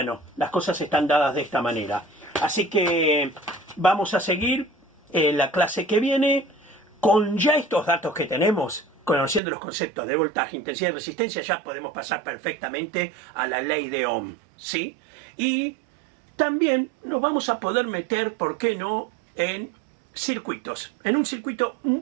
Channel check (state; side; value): drops out; left; at 9.4 s